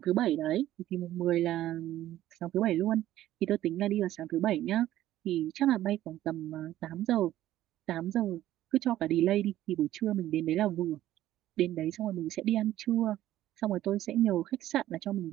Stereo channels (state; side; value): quieter; left; 13.7 dB